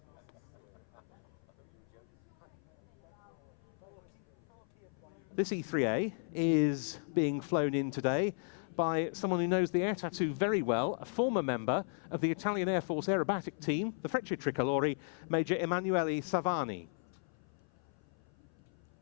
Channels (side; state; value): right; silent; 54 dB below the other